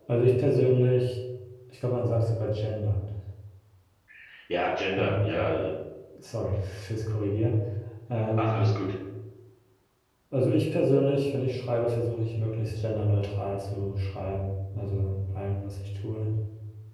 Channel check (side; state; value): both; identical; correlation 1.00